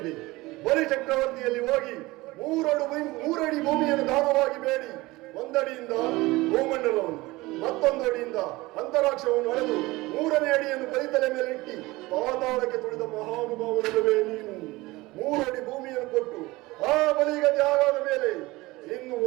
ಬಲಿ ಚಕ್ರವರ್ತಿಯಲ್ಲಿ ಹೋಗಿ 3 ಅಡಿ ಭೂಮಿಯನ್ನು ದಾನವಾಗಿ ಬೇಡಿ, 1 ಅಡಿಯಿಂದ ಭೂಮಂಡಲವನ್ನು, ಮತ್ತೊಂದು ಅಡಿಯಿಂದ ಅಂತರಾಕ್ಷವನ್ನು ಅಳೆದು 3ನೇ ಅಡಿಯನ್ನು ಬಲಿತಲೆ ಮೇಲೆ ಇಟ್ಟಿ ಪಾತಾಳಕ್ಕೆ ತುಳಿದ ಮಹಾನುಭಾವನಲ್ಲವೇ ನೀನು. 3 ಅಡಿ ಭೂಮಿಯನ್ನು ಕೊಟ್ಟು ಆ ಬಲಿಗತಿ ಆಗಾದ ಮೇಲೆ ಇನ್ನು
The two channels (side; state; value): left; quieter; 20.7 dB